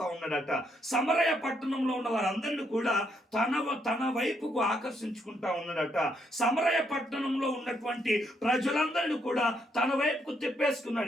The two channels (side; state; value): both; normal; correlation 0.75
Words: ఉన్నాడట. సమరయ పట్టణంలో ఉన్న వారందరినీ కూడా తన వైపుకు ఆకర్షించుకుంటా ఉన్నాడట. సమరయ పట్టణంలో ఉన్నటువంటి ప్రజలందరినీ కూడా తన వైపుకు